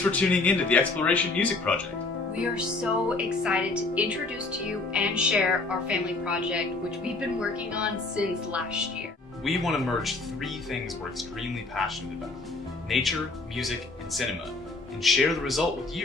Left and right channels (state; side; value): quieter; right; 3.5 dB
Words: for tuning in to the Exploration Music Project. We are so excited to introduce to you and share our family project, which we've been working on since last year. We want to merge three things we're extremely passionate about: nature, music, and cinema, and share the result with